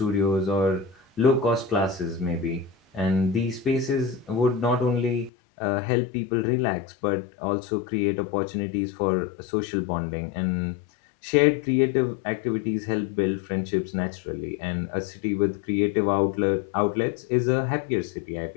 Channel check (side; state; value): right; drops out; at 5.3 s